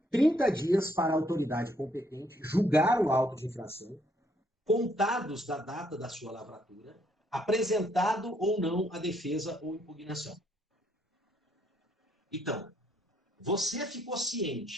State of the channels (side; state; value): both; normal; correlation 0.70